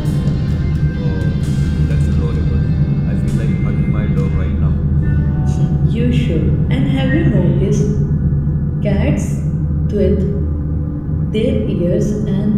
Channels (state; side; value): identical; both; correlation 1.00